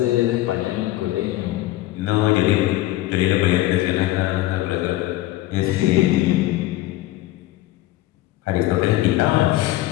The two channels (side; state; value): right; quieter; 16.5 dB